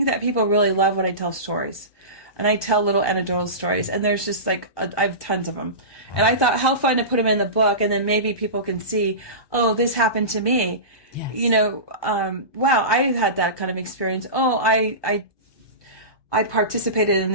that people really love when I tell stories. And I tell little anecdotal stories, and there's just I have tons of them. And I thought, how fun to put them in the book, and then maybe people can see, oh, this happened to me. Yes. Wow, I had that kind of experience. Oh, I participated in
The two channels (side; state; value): right; late; 1.2 ms